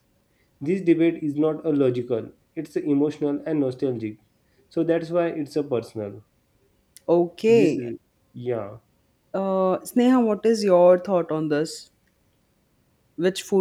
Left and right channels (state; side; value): identical; both; correlation 1.00